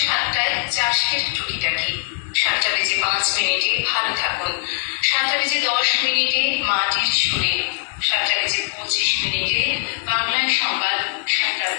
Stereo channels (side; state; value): right; silent; digital silence